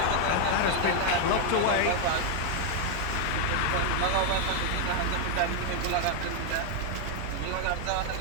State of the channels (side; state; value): both; different; correlation 0.00